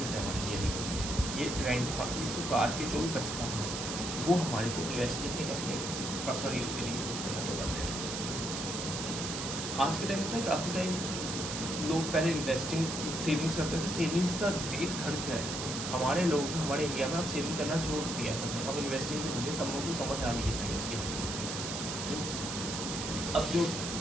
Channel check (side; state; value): right; noise; hiss, 5 dB below the sound